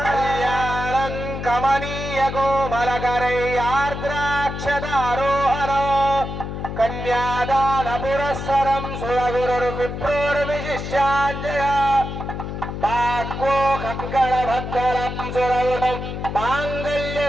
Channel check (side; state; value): left; noise; hum, 6 dB below the sound